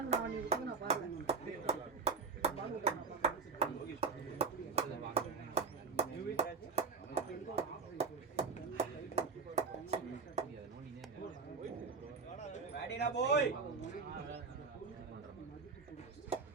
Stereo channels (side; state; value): left; quieter; 4.7 dB